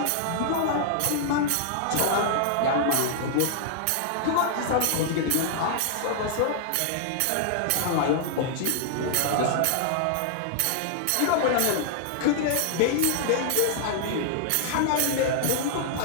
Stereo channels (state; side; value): different; both; correlation -0.01